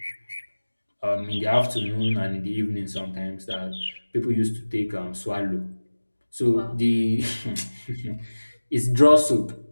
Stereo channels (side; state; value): both; inverted; correlation -1.00